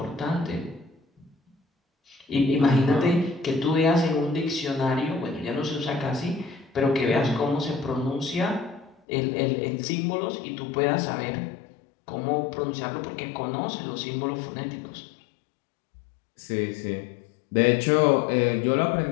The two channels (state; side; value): drops out; right; at 9.0 s